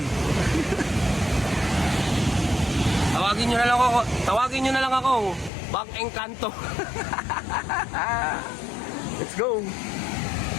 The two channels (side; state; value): right; drops out; at 5.5 s